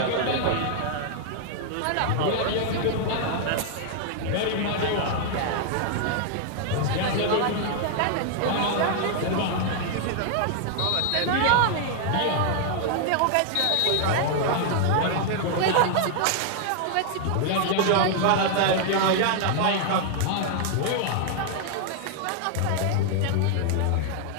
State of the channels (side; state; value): both; different; correlation 0.00